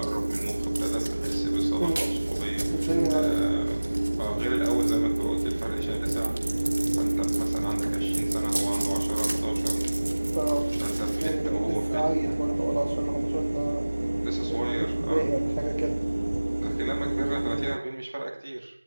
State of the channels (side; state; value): both; inverted; correlation -1.00